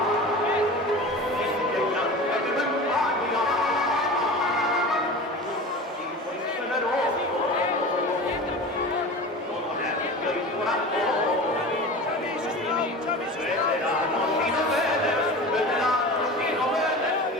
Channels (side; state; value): both; normal; correlation 0.33